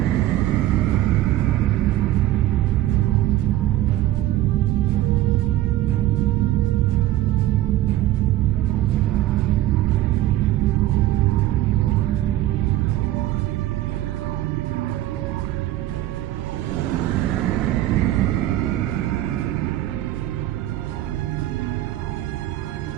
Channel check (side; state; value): left; quieter; 14.4 dB